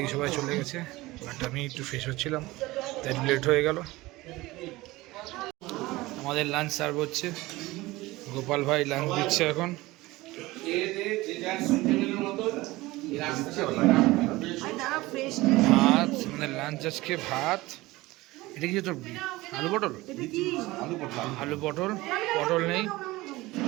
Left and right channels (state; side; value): quieter; left; 19.7 dB